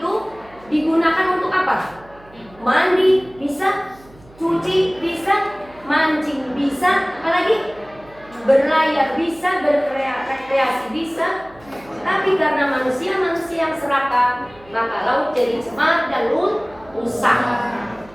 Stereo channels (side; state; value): right; noise; hum, 25 dB below the sound